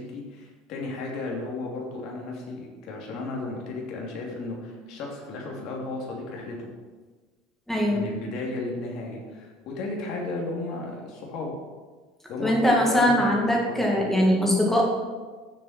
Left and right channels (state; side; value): normal; both; correlation 0.64